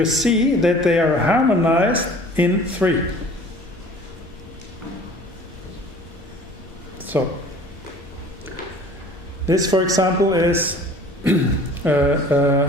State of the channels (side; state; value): both; normal; correlation 0.47